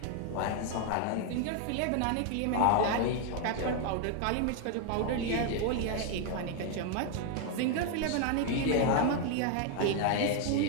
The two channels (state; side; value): different; both; correlation 0.00